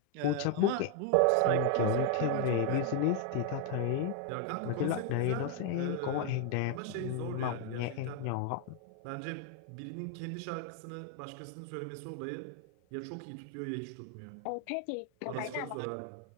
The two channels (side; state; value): both; different; correlation 0.01